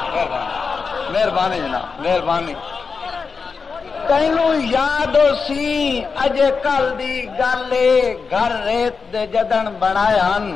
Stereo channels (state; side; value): quieter; right; 5.0 dB